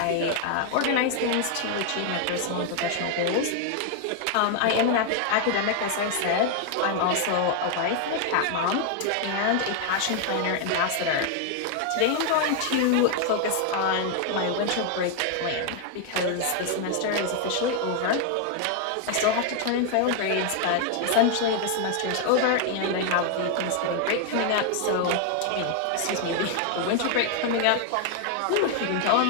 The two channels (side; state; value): both; different; correlation 0.00